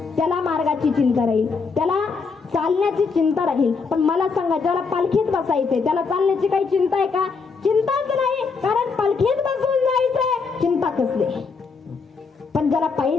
त्याला मार्गाची चिंता राहील, त्याला चालण्याची चिंता राहील. पण मला सांगा ज्याला पालखीत बसायचंय त्याला चालण्याची काही चिंता आहे का? चिंताच नाही, कारण पालखीत बसून जायचंय, चिंता कसली. पण ज्याला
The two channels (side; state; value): right; quieter; 4.9 dB